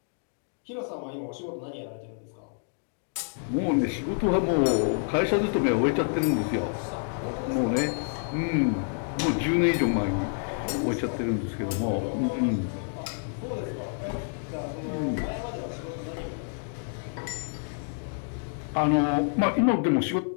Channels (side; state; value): right; silent; 59 dB below the other